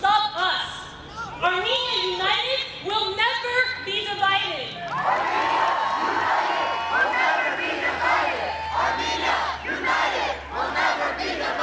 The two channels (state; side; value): identical; both; correlation 1.00